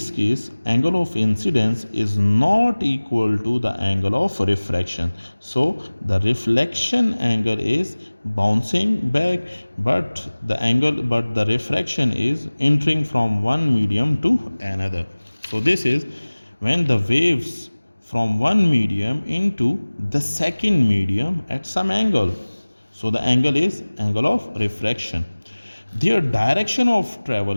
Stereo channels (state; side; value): inverted; both; correlation -1.00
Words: case, angle of incidence is not equal to the angle of refraction. So the reflection angle is bouncing back, but the refraction is entering from one medium to another. So this is when the waves from one medium into the second medium at some angle. So the angle is angle of refraction. Their direction of travel